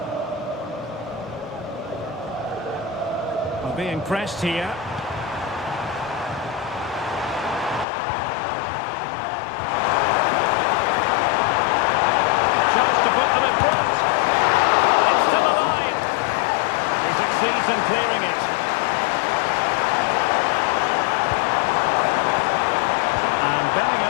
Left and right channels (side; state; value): right; drops out; at 7.9 s